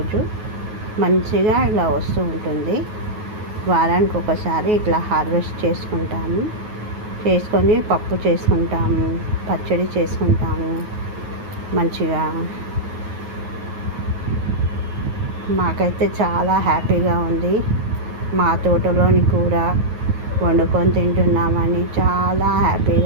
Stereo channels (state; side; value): late; left; 9.3 ms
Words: మంచిగా ఇలా వస్తూ ఉంటుంది. వారానికి ఒకసారి ఇట్లా హార్వెస్ట్ చేసుకొని పప్పు చేసుకుంటాము, పచ్చడి చేసుకుంటాము. మంచిగా మాకైతే చాలా హ్యాపీగా ఉంది. మా తోటలోని కూర వండుకొని తింటున్నామని చాలా